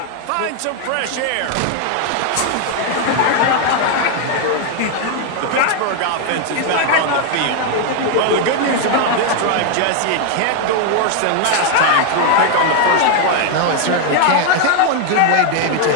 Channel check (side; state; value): both; different; correlation 0.00